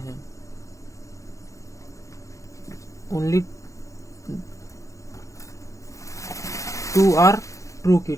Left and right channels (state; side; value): late; right; 0.15 ms